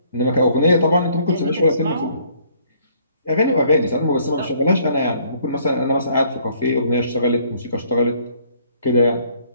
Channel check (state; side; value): inverted; both; correlation -0.62